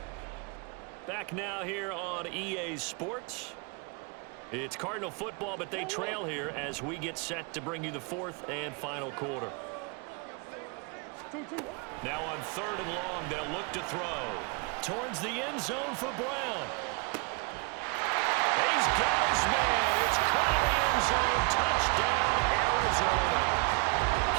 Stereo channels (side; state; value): left; quieter; 31.6 dB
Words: Back now here on EA Sports. It's Cardinal football, but they trail here as we get set to bring you the fourth and final quarter. Now on third and long, they'll look to throw. Towards the end zone for Brown. He's got his man. It's caught in the end zone. Touchdown, Arizona.